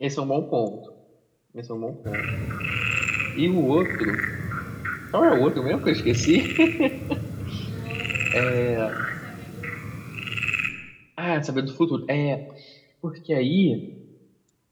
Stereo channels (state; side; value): identical; both; correlation 1.00